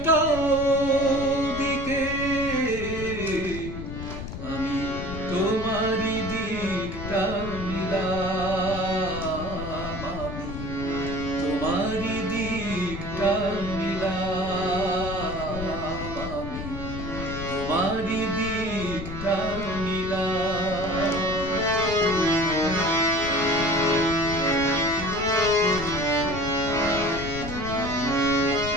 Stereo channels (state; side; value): noise; left; rumble, 8 dB below the sound